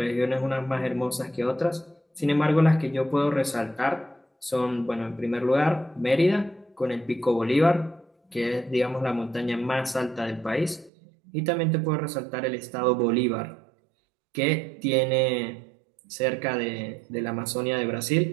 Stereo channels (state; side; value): drops out; left; at 10.9 s